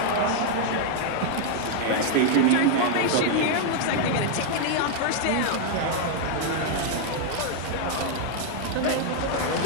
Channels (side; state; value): both; different; correlation 0.00